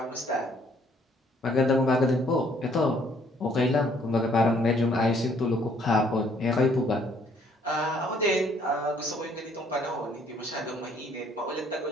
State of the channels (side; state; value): both; normal; correlation 0.63